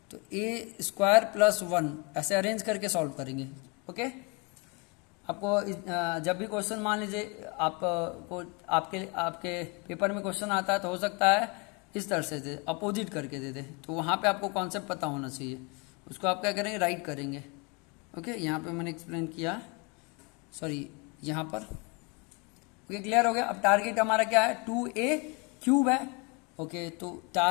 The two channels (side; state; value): right; quieter; 30.9 dB